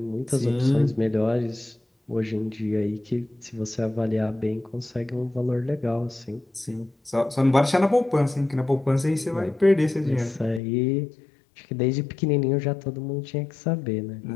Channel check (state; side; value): drops out; right; at 10.6 s